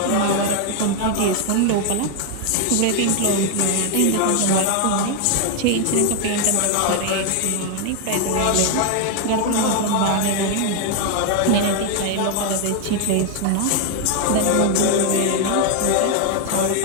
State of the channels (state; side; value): different; both; correlation 0.01